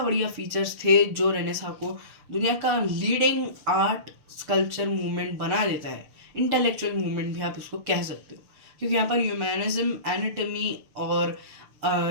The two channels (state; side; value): late; left; 6.7 ms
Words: फीचर्स थे, जो रेनेसां को दुनिया का लीडिंग आर्ट स्कल्पचर मूवमेंट बना देता है, इंटेलेक्चुअल मूवमेंट भी आप इसको कह सकते हो, क्योंकि यहाँ पर ह्यूमैनिज्म, एनाटॉमी और